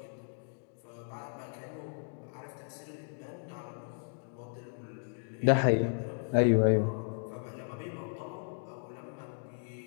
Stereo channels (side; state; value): right; silent; digital silence